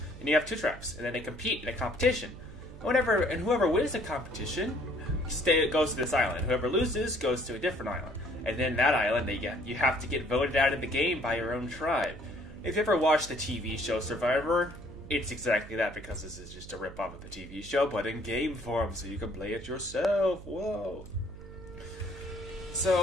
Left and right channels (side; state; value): right; noise; hum, 15 dB below the sound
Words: and you have 2 tribes, and then they compete in a competition. And whoever wins the competition goes to this island. Whoever loses goes to a different island. And then that island, you have to get voted out of the game by your own tribe. If you ever watched the TV show Survivor, it's exactly that, because this is just a rip-off of the TV show, but in game form, so you can play it yourself. Whoa.